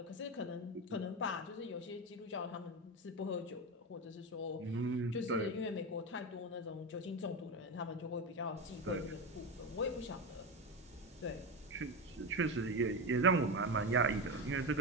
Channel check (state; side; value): normal; both; correlation 0.16